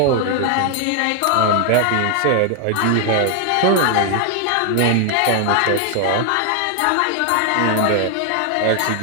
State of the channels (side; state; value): both; different; correlation 0.00